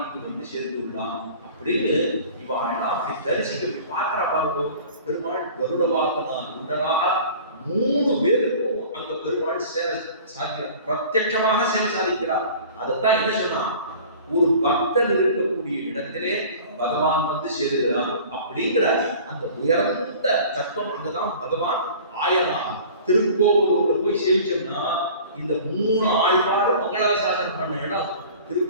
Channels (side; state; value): both; inverted; correlation -0.44